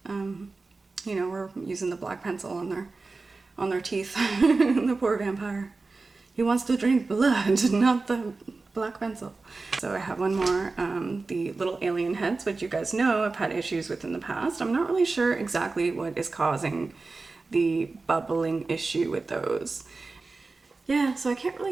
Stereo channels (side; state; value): left; quieter; 3.8 dB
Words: you know, we're using the black pencil on their teeth. The poor vampire. He wants to drink blood, not the black pencil. So I have one more, the little alien heads, which you guys know I've had issues with in the past. I'm not really sure exactly what is causing the bubbling issue with those. Yeah, so I can't